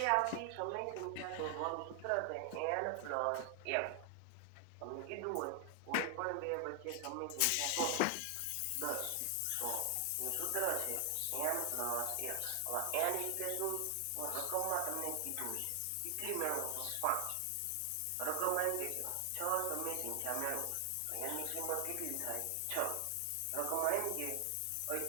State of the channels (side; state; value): both; different; correlation 0.00